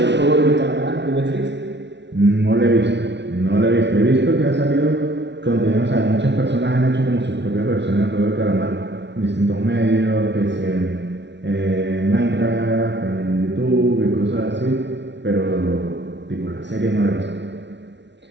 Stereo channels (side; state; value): left; late; 0.51 ms